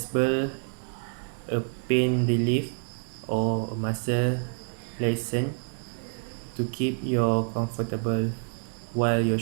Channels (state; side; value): silent; left; 60 dB below the other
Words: a pain relief or a muscle relaxant to keep you comfortable while your